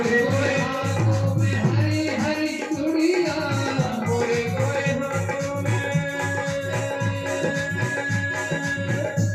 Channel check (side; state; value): both; identical; correlation 1.00